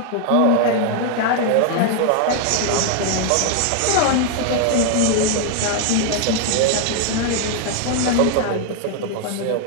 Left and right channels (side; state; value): both; different; correlation 0.00